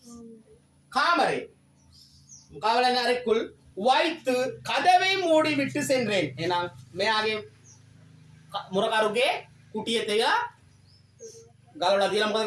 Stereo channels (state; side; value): identical; both; correlation 1.00